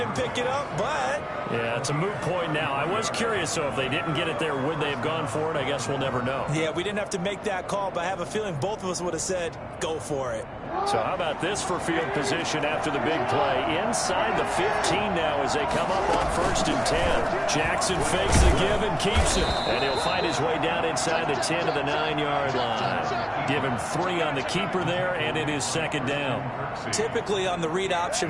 pick it up, but... Yeah, it's a moot point now. I was curious, so if they didn't get it there, would they have gone for it? I guess we'll never know. Yeah, we didn't have to make that call, but I have a feeling both of us would have said, go for it. So how about this for field position after the big play? Inside the 15 now as they come up on 1st and 10. Jackson fakes the give and keeps it. And he'll find his way down inside the 10 to the 9-yard line. Give him 3 on the keeper there, and it is 2nd down. Typically on the read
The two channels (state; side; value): identical; both; correlation 1.00